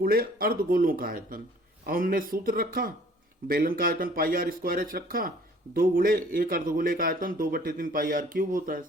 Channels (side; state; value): both; normal; correlation 0.54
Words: अर्धगोलों का आयतन। अब हमने सूत्र रखा, बेलन का आयतन पाई आर स्क्वायर एच रखा, 2 गुणे एक अर्धगोले का आयतन 2/3 पाई आर क्यूब होता है।